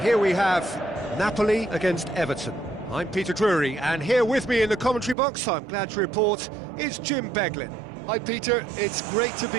here we have Napoli against Everton. I'm Peter Drury, and here with me in the commentary box, I'm glad to report, is Jim Beglin. Hi Peter, it's great to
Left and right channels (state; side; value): drops out; left; at 5.2 s